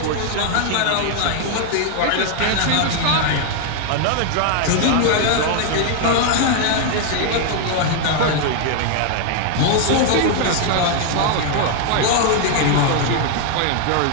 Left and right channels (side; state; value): both; different; correlation 0.00